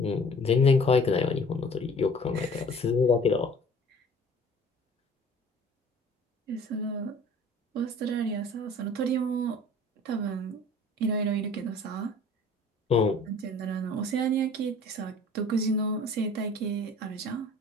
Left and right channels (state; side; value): normal; both; correlation 0.48